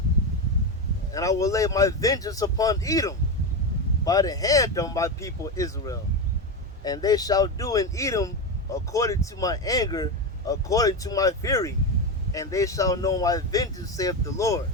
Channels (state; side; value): normal; both; correlation 0.15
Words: And I will lay my vengeance upon Edom by the hand of my people Israel. And they shall do in Edom according to my anger, according to my fury. And they shall know my vengeance, saith the Lord.